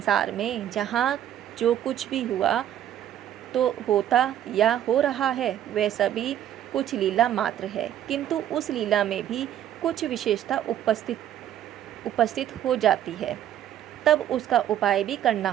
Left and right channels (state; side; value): quieter; left; 11.0 dB